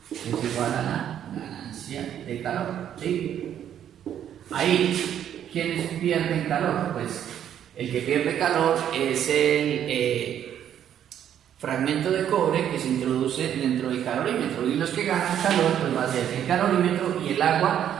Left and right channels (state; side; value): quieter; left; 10.0 dB